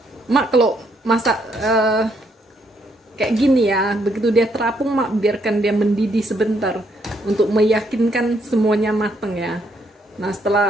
mak kalau masak kayak gini ya, begitu dia terapung mak biarkan dia mendidih sebentar untuk meyakinkan semuanya matang ya. Nah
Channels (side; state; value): both; normal; correlation 0.73